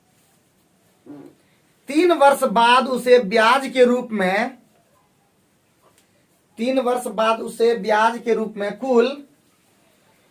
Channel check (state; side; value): identical; both; correlation 1.00